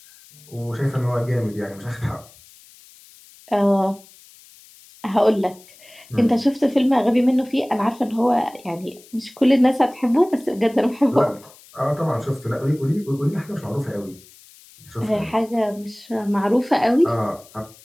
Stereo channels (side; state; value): left; noise; hiss, 24 dB below the sound